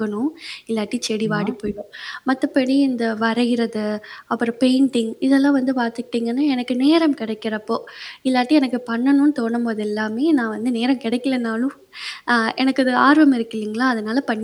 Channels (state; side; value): identical; both; correlation 1.00